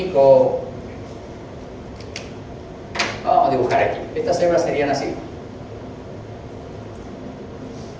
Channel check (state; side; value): identical; both; correlation 1.00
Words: Vamos a dibujar aquí. Estas células serían así.